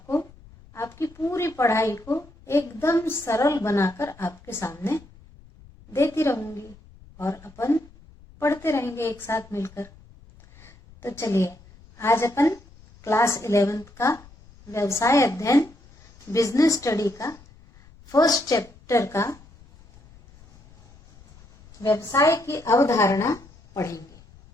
आपकी पूरी पढ़ाई को एकदम सरल बनाकर आपके सामने देती रहूंगी और अपन पढ़ते रहेंगे एक साथ मिलकर। तो चलिए, आज अपन क्लास 11th का व्यवसाय अध्ययन बिजनेस स्टडी का फर्स्ट चैप्टर का व्यवसाय की अवधारणा पढ़ेंगे।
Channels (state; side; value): noise; left; rumble, 24 dB below the sound